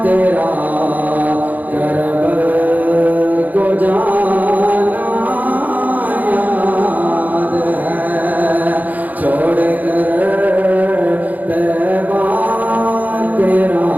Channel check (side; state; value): left; late; 0.080 ms